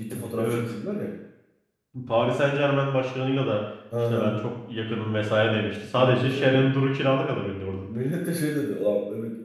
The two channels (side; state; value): both; identical; correlation 1.00